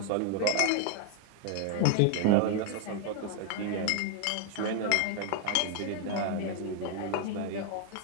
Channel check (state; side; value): different; both; correlation 0.00